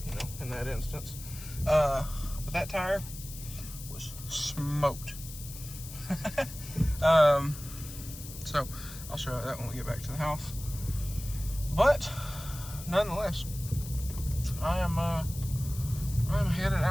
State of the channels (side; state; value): left; noise; hiss, 13 dB below the sound